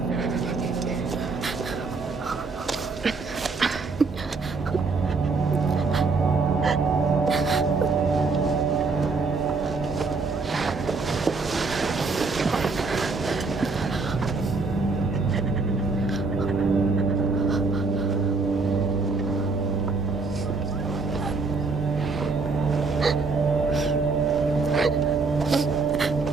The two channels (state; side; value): quieter; left; 4.2 dB